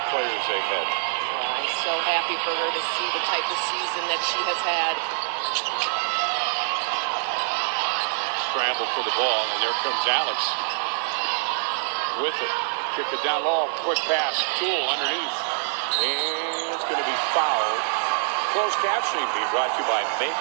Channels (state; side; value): silent; left; digital silence